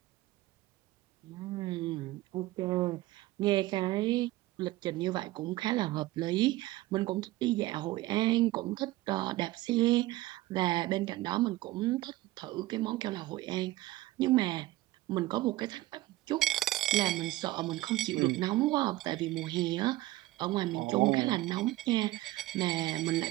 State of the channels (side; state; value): left; quieter; 17.8 dB